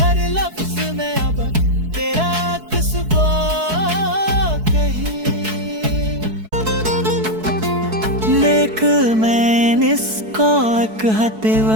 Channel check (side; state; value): left; late; 4.6 ms